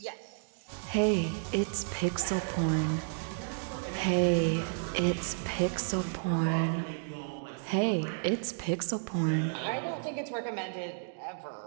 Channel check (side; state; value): left; silent; digital silence